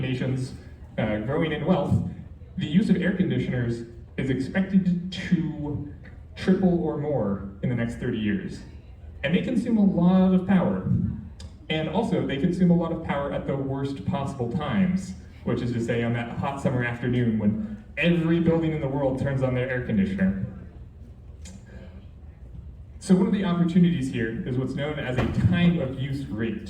nations growing in wealth, the use of air conditioners is expected to triple or more in the next 30 years. And they consume a lot of power. And also, they consume a lot of power at the worst possible times, which is to say on that hot summer afternoon when every building in the world turns on their air conditioner. So one of the opportunities here is what's known as a time of use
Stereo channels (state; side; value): identical; both; correlation 1.00